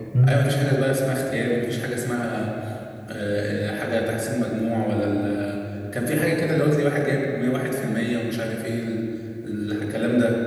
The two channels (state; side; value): identical; both; correlation 1.00